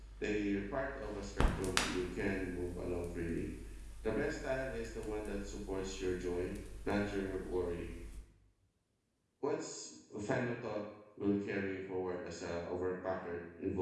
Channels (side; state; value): both; identical; correlation 1.00